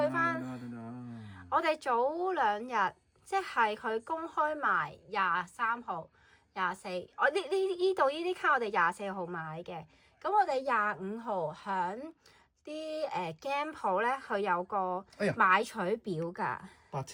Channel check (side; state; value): both; identical; correlation 1.00